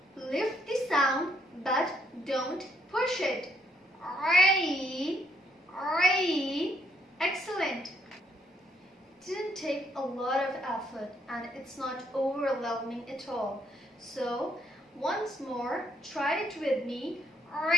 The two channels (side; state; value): both; normal; correlation 0.71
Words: Lift the sound but don't push it. Rain, rain. Excellent. It didn't take a lot of effort and it's not overwhelming at all. So once more, try it with me.